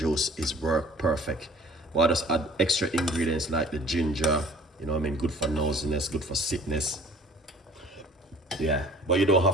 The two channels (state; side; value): normal; both; correlation 0.50